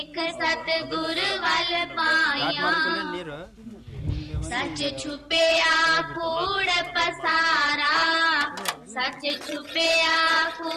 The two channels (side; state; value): both; identical; correlation 1.00